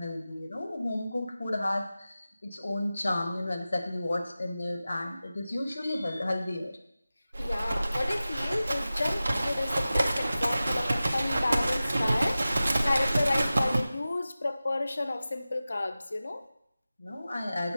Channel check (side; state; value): both; inverted; correlation -0.95